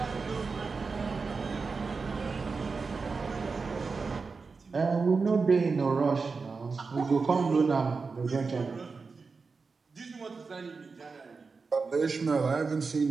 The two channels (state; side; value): quieter; left; 4.6 dB